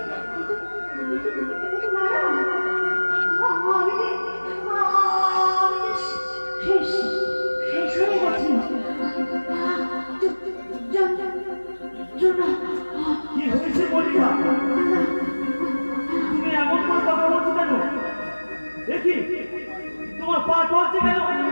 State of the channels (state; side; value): inverted; both; correlation -1.00